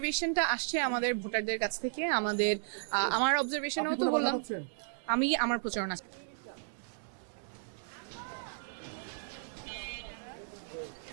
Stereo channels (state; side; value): silent; left; digital silence